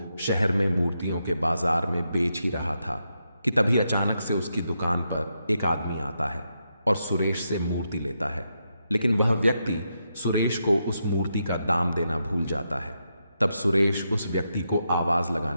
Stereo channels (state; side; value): inverted; both; correlation -0.83